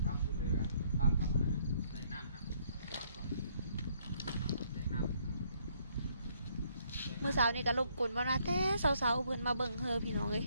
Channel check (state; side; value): inverted; both; correlation -0.68